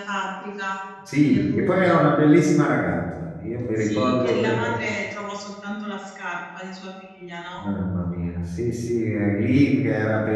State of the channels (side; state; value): both; identical; correlation 1.00